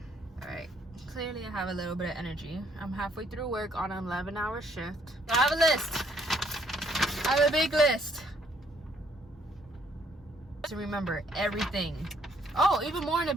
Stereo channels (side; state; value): both; normal; correlation 0.66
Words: All right. Clearly I have a little bit of energy. I'm halfway through work on an 11-hour shift. I have a list. I have a big list to remember everything. Oh, even more in the